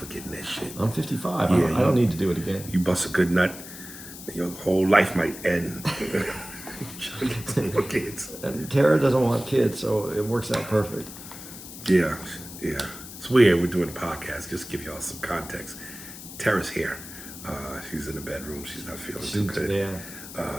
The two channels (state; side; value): noise; left; hiss, 13 dB below the sound